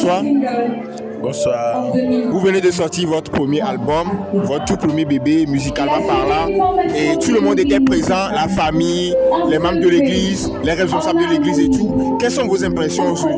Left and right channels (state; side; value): identical; both; correlation 1.00